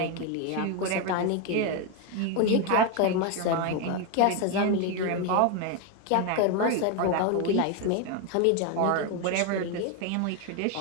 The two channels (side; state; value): both; different; correlation 0.02